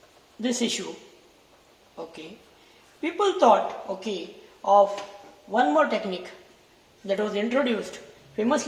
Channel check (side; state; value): both; identical; correlation 1.00